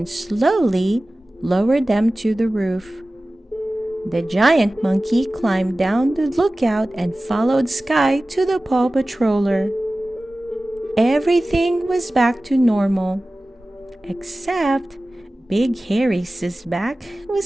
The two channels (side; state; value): both; normal; correlation 0.97